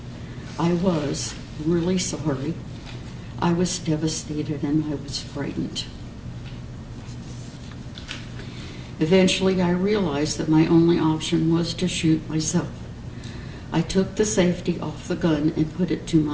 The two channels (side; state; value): both; identical; correlation 1.00